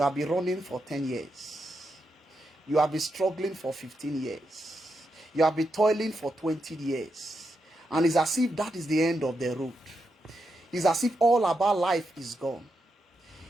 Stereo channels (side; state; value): both; normal; correlation 0.84